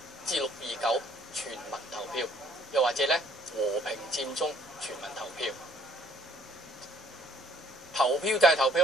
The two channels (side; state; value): both; normal; correlation 0.62